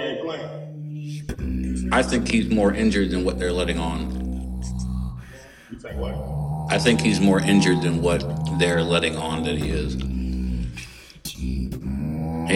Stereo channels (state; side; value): identical; both; correlation 1.00